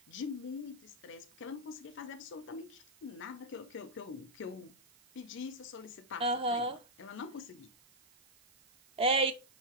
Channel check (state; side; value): noise; right; hiss, 26 dB below the sound